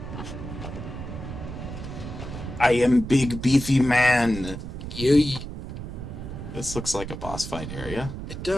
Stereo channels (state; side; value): noise; right; rumble, 8 dB below the sound